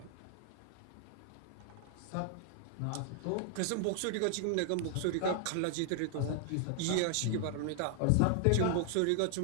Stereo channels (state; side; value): different; both; correlation 0.00